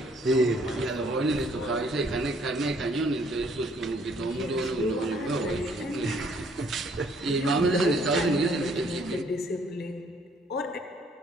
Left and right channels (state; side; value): normal; both; correlation 0.63